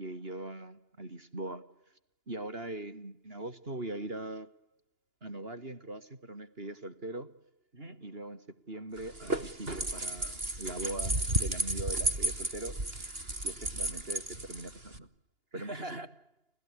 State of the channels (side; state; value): left; late; 2.9 ms